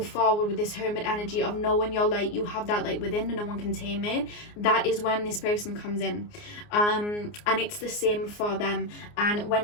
forward with this hermit energy of knowing your light, you have that light within and no one can tame it, that is when this person comes in. And it's the same for them. And when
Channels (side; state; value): right; late; 29 ms